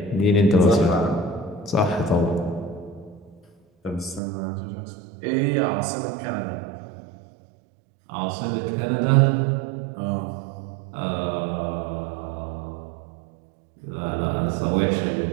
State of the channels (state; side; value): drops out; left; at 4.2 s